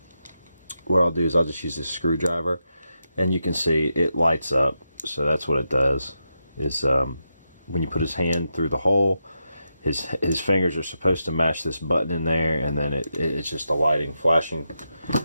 what I'll do is I'll just use this screwdriver, and you can see it lights up. So that's what it does, is when you put his hand through the hole, his fingers are supposed to match this button in there, and then it's just the lighting flashing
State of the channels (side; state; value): both; inverted; correlation -0.86